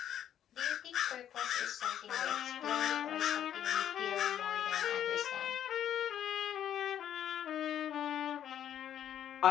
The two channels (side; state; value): right; quieter; 10.3 dB